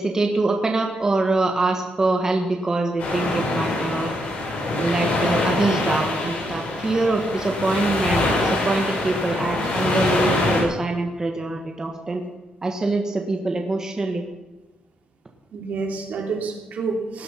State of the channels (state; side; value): normal; both; correlation 0.80